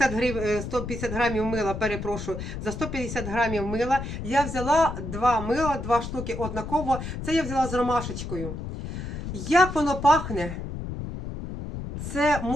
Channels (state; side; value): noise; left; rumble, 7 dB below the sound